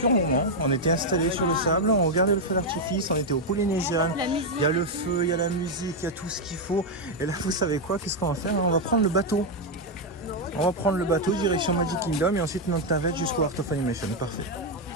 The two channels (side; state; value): both; normal; correlation 0.02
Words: moment. On était installés sur le sable, on regardait le feu d'artifice, on était au Polynésien. Il y a le feu, il y a la musique, il y a tout ce qu'il faut. Et là, vous savez quoi? Qu'est-ce qu'on va faire? On va prendre le bateau. On va prendre le bateau direction Magic Kingdom et ensuite notre navette jusqu'au Art of Animation. Parfait.